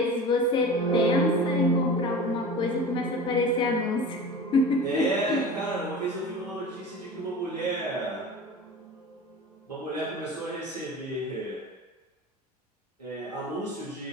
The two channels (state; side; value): normal; both; correlation 0.35